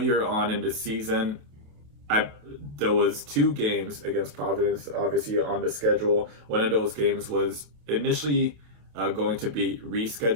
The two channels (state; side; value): late; left; 27 ms